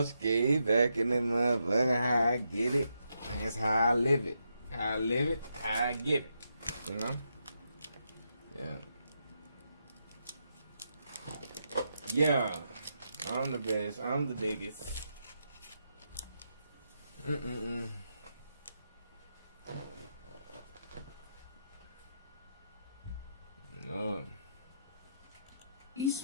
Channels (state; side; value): inverted; both; correlation -0.82